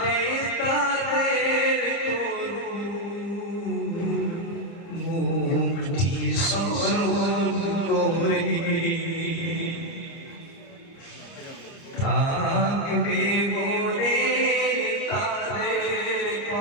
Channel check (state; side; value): late; right; 30 ms